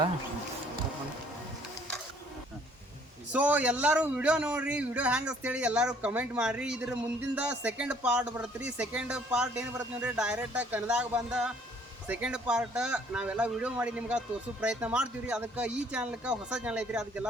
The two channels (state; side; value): normal; both; correlation 0.60